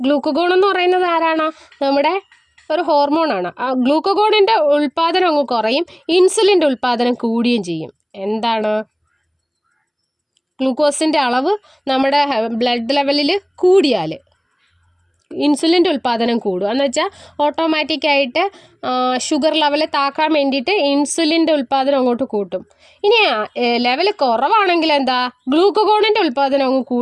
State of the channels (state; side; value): identical; both; correlation 1.00